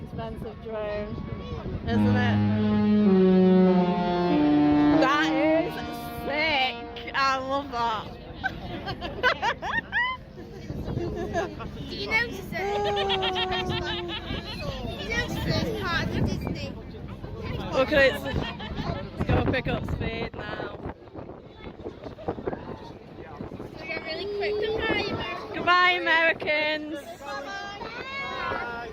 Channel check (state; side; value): identical; both; correlation 1.00